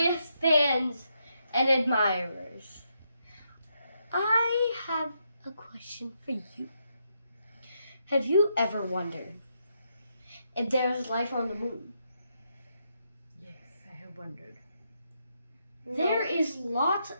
fans and admirers. I have a question for you. Have you ever wondered if there is life on the moon? Yes, I have wondered. There is lots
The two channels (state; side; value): inverted; both; correlation -0.80